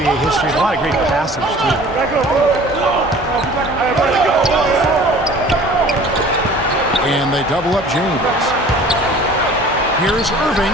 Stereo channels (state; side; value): normal; both; correlation 0.47